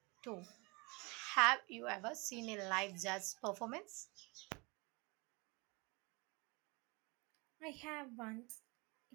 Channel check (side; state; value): left; quieter; 27.6 dB